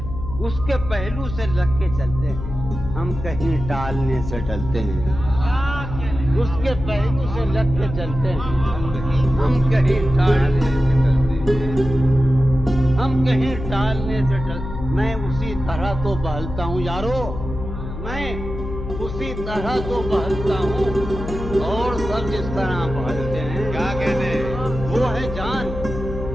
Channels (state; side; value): noise; left; hum, 8 dB below the sound